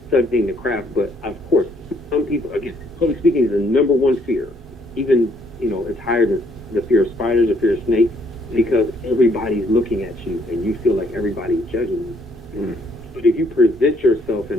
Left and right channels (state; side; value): normal; both; correlation 0.67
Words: studying the craft. But of course, some people, again, public speaking is the number one fear. Even, you know, it's higher than the fear of spiders, the fear of snakes, because everybody's looking at you and you feel like everybody's judging you. But if you present yourself